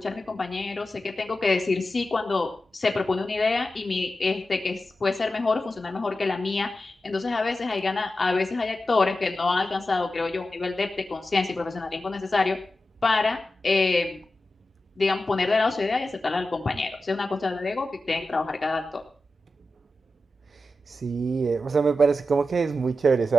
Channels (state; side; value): normal; both; correlation 0.91